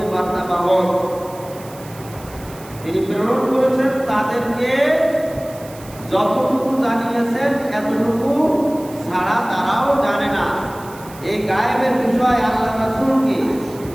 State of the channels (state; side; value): noise; right; hiss, 20 dB below the sound